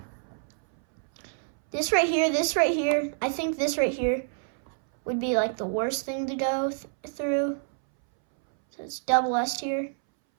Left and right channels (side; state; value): left; silent; 60 dB below the other